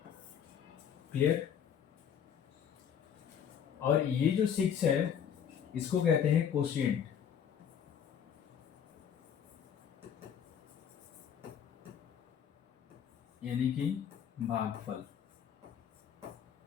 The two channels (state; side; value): quieter; right; 8.4 dB